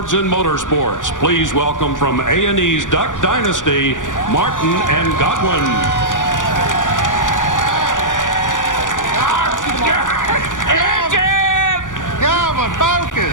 in motorsports. Please welcome from A&E's Duck Dynasty, Martin and Godwin. Godwin,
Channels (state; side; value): late; right; 0.87 ms